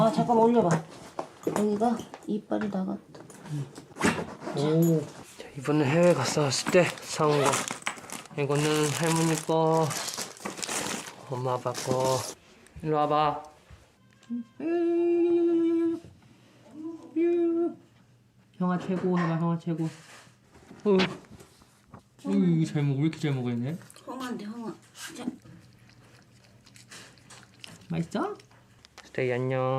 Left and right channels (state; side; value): identical; both; correlation 1.00